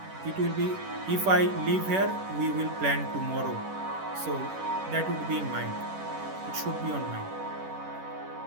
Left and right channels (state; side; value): late; left; 11 ms